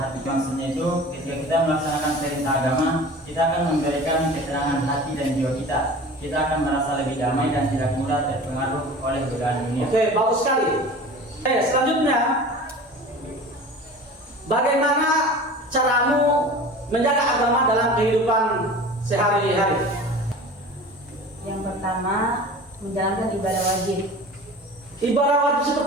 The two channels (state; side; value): normal; both; correlation 0.39